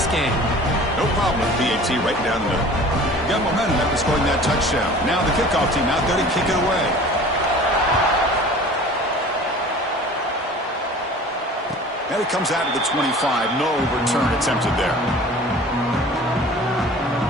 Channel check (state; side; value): normal; both; correlation 0.43